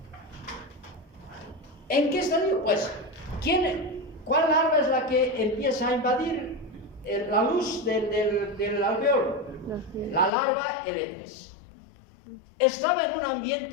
¿En qué estadio? Pues, ¿cuál larva es la que empieza a invadir la luz del alveolo? La larva L3. Estaba en un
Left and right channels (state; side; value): drops out; right; at 10.3 s